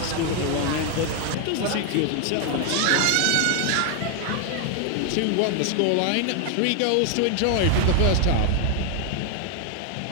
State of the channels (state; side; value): different; both; correlation 0.00